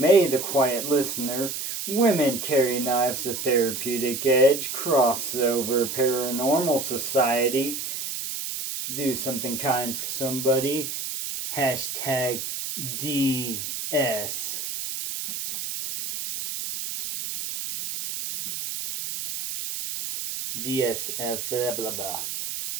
The Quiet Listener, Women Carry Knives, The Therapeutic Edge, Crossover, Paranormal Society, Do Something Kind for Somebody, hashtag DS. DSF, blah, blah, blah.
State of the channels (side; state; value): right; noise; hiss, 5 dB below the sound